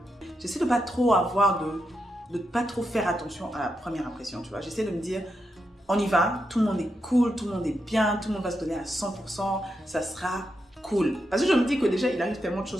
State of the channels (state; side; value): normal; both; correlation 0.85